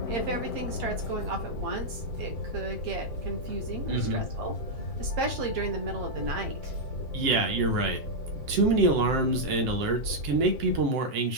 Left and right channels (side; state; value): left; late; 7.5 ms